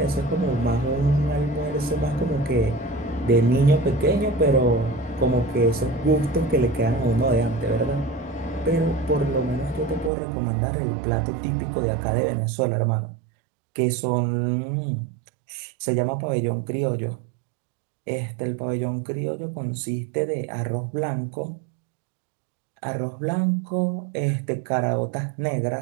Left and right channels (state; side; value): drops out; left; at 10.1 s